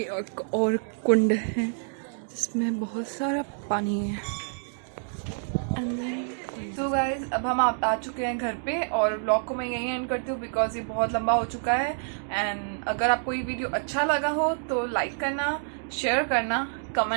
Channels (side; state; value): left; silent; digital silence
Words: और कुंड है जिसमें बहुत सारा पानी है। तो गाइज अब हम आ चुके हैं घर पे, और ब्लॉग को मैं यहीं एंड करती हूँ बिकॉज ये बहुत लंबा हो चुका है। एंड अगर आपको ये वीडियो अच्छा लगा हो तो लाइक करना, शेयर करना,